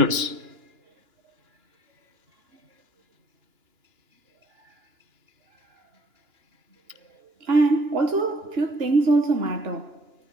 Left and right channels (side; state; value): left; late; 2.9 ms